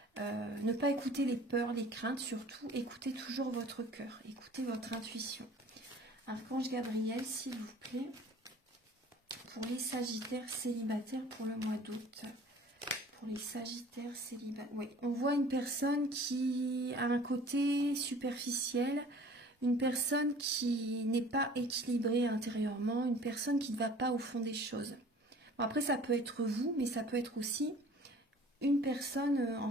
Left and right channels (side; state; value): both; normal; correlation 0.48